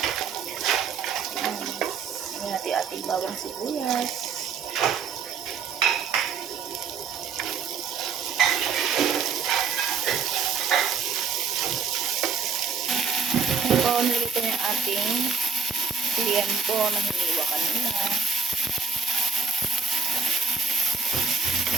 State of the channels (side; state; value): left; quieter; 5.5 dB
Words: Ngayon natin ating bawang sibuyas. Ngayon po, nilito yung ating tiempo na hiniwa kanina.